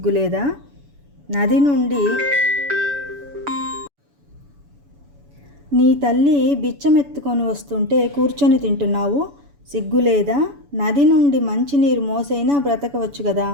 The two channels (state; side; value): late; left; 7.0 ms